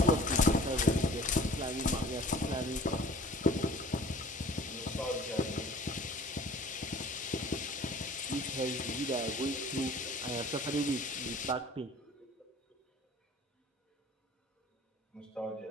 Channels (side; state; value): both; normal; correlation 0.48